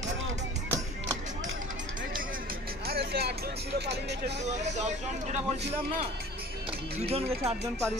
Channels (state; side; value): normal; both; correlation 0.45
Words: বলছিলাম না, দুজন গেছে, 8 জন